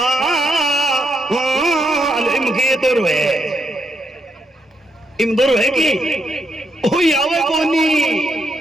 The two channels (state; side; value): normal; both; correlation 0.79